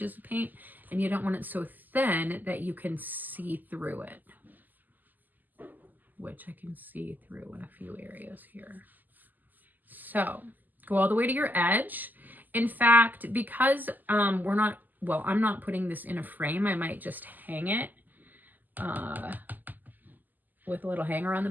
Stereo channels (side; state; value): left; late; 0.085 ms